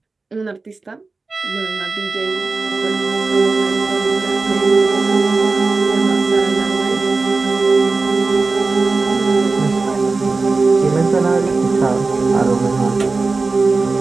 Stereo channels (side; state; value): left; quieter; 3.9 dB